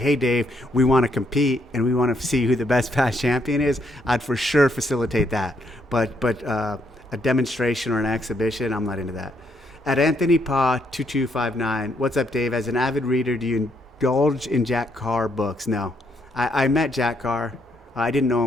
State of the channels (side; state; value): both; normal; correlation 0.74